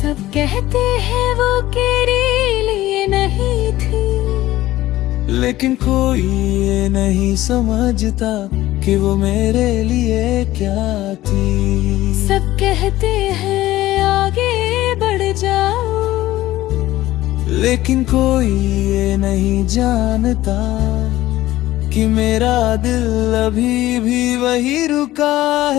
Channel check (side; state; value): right; quieter; 15.8 dB